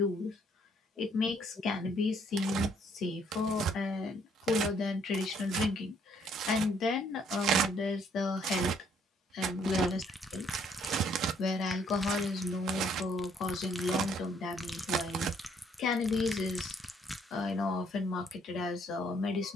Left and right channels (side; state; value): both; normal; correlation 0.66